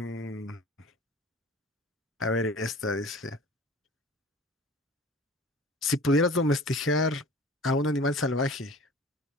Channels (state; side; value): normal; both; correlation 0.42